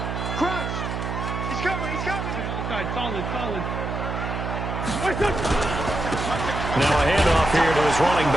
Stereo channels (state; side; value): noise; right; hum, 4 dB below the sound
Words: Crunch. He's coming. He's coming. Okay, other side. Solid. Solid. Now a handoff here to his running